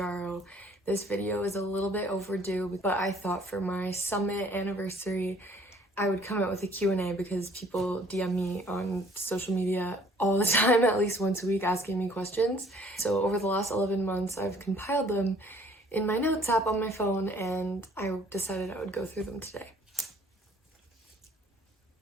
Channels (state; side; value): normal; both; correlation 0.57